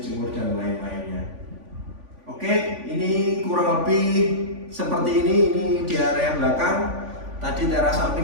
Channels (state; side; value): late; left; 3.5 ms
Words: dan lain-lainnya. Oke, ini kurang lebih seperti ini di area belakang. Tadi teras